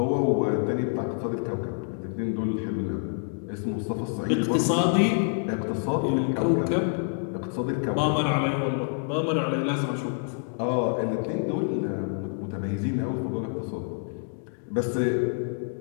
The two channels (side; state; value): right; silent; 60 dB below the other